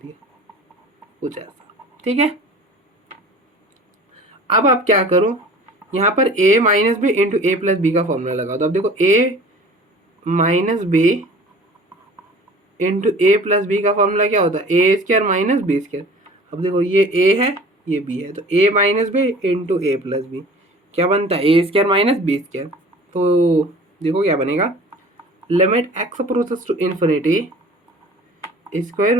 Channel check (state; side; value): normal; both; correlation 0.44